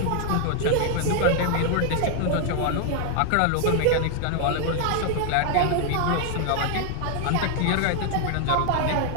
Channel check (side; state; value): both; different; correlation 0.00